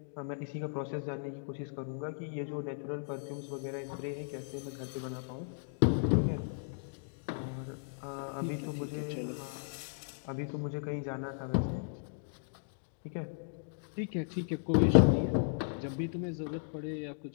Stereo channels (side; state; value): right; silent; digital silence